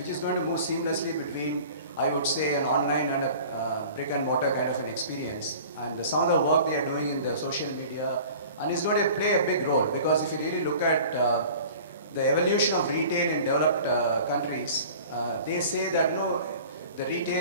move seamlessly between, I would say, an online and a brick and mortar kind of an experience. And some of the work they are doing in the social media, and it's going to play a big role, because if you really look at the evolution of retail in developed countries, they say that the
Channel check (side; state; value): both; inverted; correlation -0.44